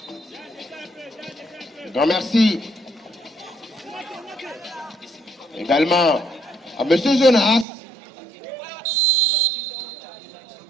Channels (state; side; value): drops out; left; at 7.7 s